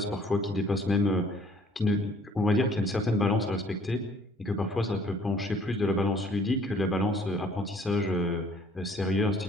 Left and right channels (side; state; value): both; normal; correlation 0.58